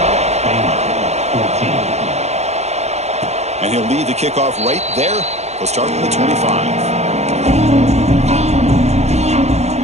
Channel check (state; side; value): late; left; 0.32 ms